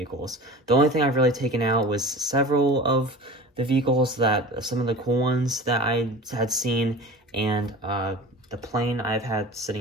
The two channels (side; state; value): both; normal; correlation 0.36